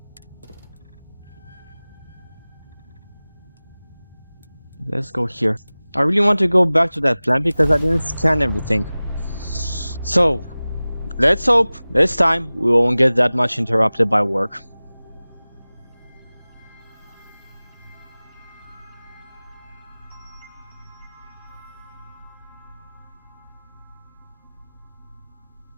let's go here. I really want to go back to that plant because I didn't scan everything. So let's hope this time we won't get that much interrupted by work.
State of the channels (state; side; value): inverted; both; correlation -0.98